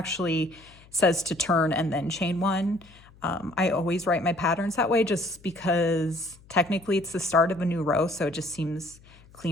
says to turn and then chain 1. I always write my patterns that way just because technically it's the start of a new row, so it just seems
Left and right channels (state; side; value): noise; left; hum, 25 dB below the sound